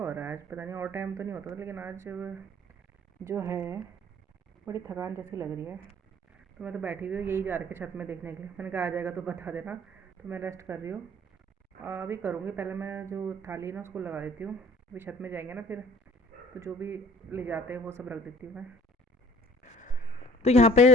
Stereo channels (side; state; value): both; normal; correlation 0.52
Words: रहा है आज, पता नहीं और टाइम तो नहीं होता था, लेकिन आज जो है बड़ी थकान जैसी लग रही है। तो मैं तो बैठी हुई हूँ, यही जा रही छत में देखने के लिए। मैंने कहा आ जाएगा तो बता देना। तो मैं रेस्ट कर रही हूँ, अभी करूँगी। पहले मैं जो थाली है ना उसको लगा देती हूँ, अभी छत में जाएंगे ना फिर, तो जो भी ले जाते हैं वो सब रख देती हूँ मैं। तो यहाँ पे